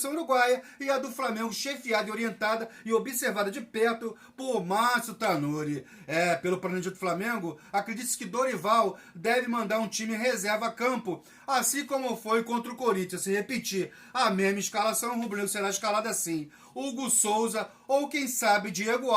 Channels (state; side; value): identical; both; correlation 1.00